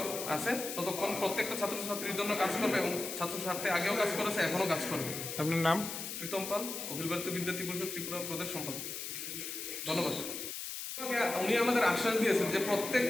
আছে, ততক্ষণ প্রত্যেকটা ছাত্রছাত্রীর জন্য কাজ করবে এবং ছাত্র স্বার্থে আগেও কাজ করেছে, এখনও কাজ করবে। আপনার নাম? প্রীতম পাল, অখিল ভারতীয় বিদ্যার্থী পরিষদ ত্রিপুরা প্রদেশ সম্পাদক। ধন্যবাদ। উনি আমাদের আশ্বাস দিয়েছেন যে প্রত্যেক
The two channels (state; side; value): noise; left; hiss, 6 dB below the sound